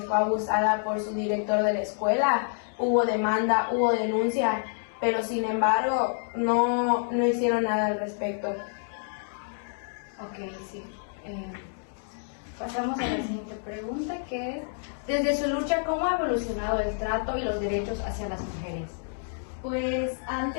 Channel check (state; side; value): silent; right; digital silence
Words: fue abusada por su director de la escuela, hubo demanda, hubo denuncia, pero sin embargo no hicieron nada al respecto. Ok, sí. Pasamos a la siguiente pregunta, que es: desde su lucha, ¿cómo ha evolucionado el trato y los derechos hacia las mujeres? Pues